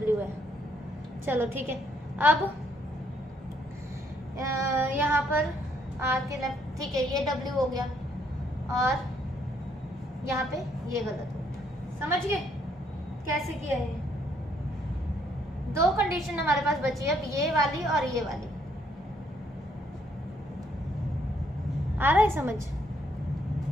है। चलो ठीक है। अब यहाँ पर R के लेफ्ट, ठीक है, ये W हो गया और यहाँ पे ये गलत हो गया, समझ गए कैसे किया है। दो कंडीशन हमारे पास बची है, अब ये वाली और ये वाली। आ रहा है समझ?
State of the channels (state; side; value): normal; both; correlation 0.70